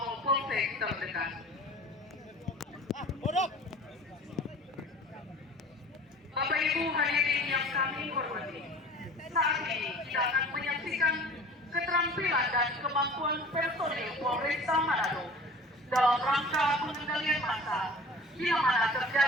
Polsek terdekat. Bapak Ibu hadirin yang kami hormati, saat ini kita akan menyaksikan keterampilan dan kemampuan personil Polresta Manado dalam rangka pengendalian massa bila mana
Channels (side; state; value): both; normal; correlation 0.43